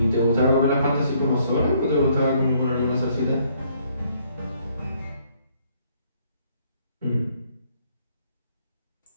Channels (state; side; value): inverted; both; correlation -0.67